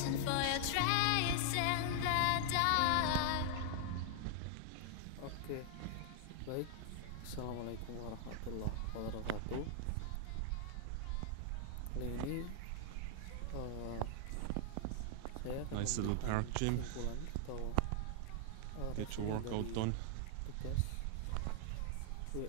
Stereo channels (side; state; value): both; different; correlation 0.00